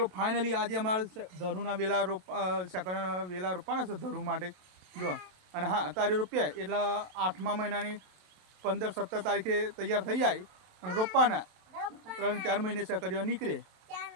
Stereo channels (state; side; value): late; left; 27 ms